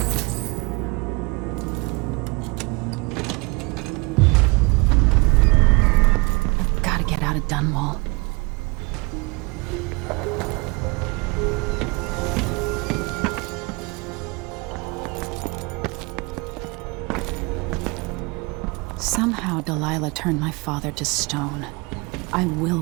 Dunwall. Somehow Delilah turned my father to stone. I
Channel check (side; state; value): left; quieter; 27.4 dB